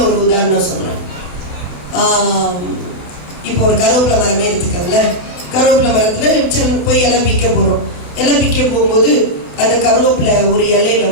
ஒரு உதாரணம் சொல்றேன். இப்போ ஒரு கருவேப்பிலை மரமே எடுத்துக்கோங்கள. கருவேப்பிலை மரத்துல போய் இலை பிக்க போறோம். இலை பிக்க போகும்போது அந்த கருவேப்பிலை ஒரு இலையில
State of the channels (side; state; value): right; late; 28 ms